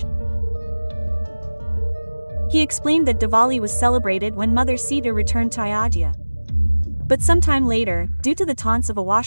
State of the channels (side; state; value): both; inverted; correlation -1.00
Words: He explained that Diwali was celebrated when Mother Sita returned to Ayodhya. But sometime later, due to the taunts of a